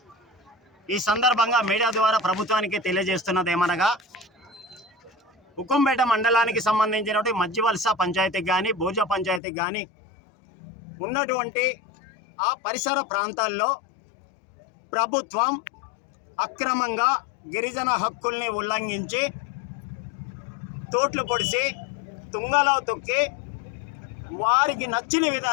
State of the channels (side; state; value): right; drops out; at 9.4 s